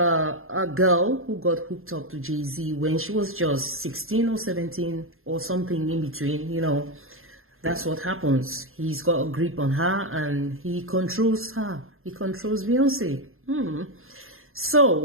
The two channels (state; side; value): late; left; 0.61 ms